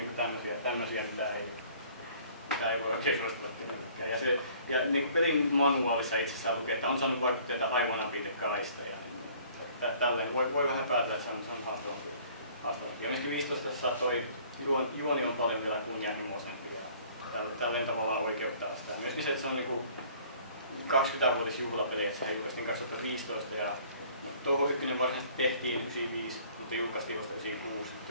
tämmöisiä mitä ei voi oikein suositella kenellekään. Ja niin pelin manuaalissa itsessään lukee, että on saanut vaikutteita aivan apitekaista. Tälleen voi vähän päätellä, että se on haastavampi. Ja myöskin 15 toi juoni on paljon vielä kunnianhimoisempi ja tälleen tavallaan oikeuttaa sitä. Myöskin se, että se on niin 20-vuotisjuhlapeli, että se julkaistiin 2015 ja touho 1 varsinaisesti tehtiin 95, mutta julkaistiin vasta 96.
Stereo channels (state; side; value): inverted; both; correlation -0.55